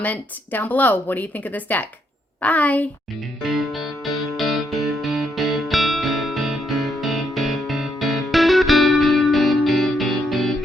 down below. What do you think of this deck? Bye.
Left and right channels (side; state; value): both; normal; correlation 0.76